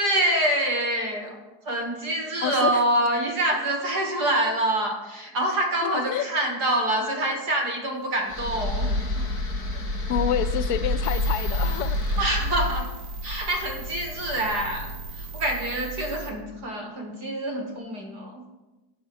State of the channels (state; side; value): late; left; 4.7 ms